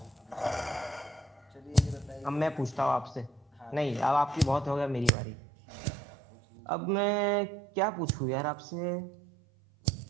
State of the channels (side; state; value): left; drops out; at 5.1 s